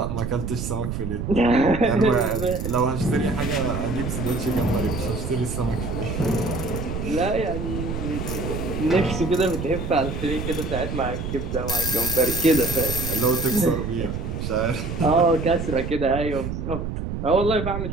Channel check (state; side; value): noise; right; rumble, 4 dB below the sound